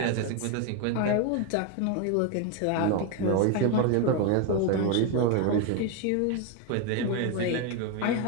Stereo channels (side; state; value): both; different; correlation 0.02